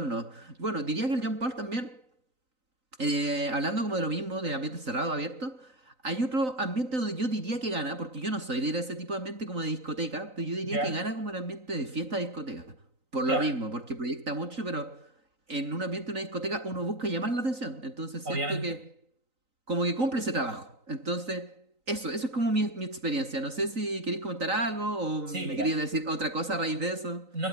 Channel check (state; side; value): late; left; 3.9 ms